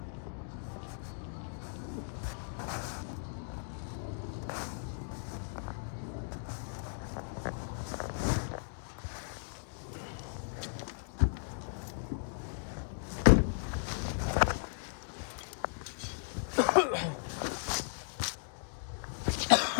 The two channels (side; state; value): right; silent; digital silence